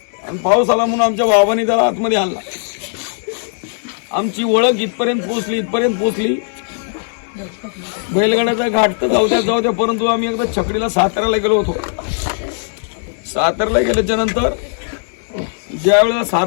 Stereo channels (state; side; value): silent; right; digital silence